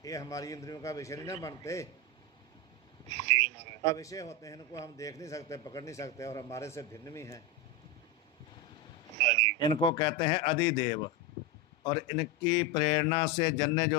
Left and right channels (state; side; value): normal; both; correlation 0.10